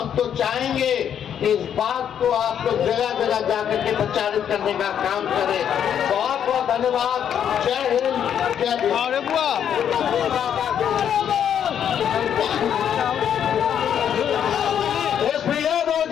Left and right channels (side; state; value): right; quieter; 9.0 dB